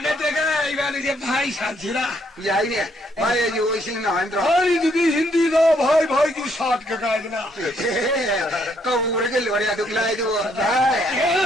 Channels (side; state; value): both; normal; correlation 0.70